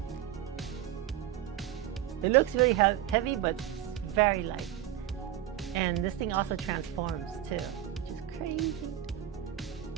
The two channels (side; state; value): left; quieter; 12.0 dB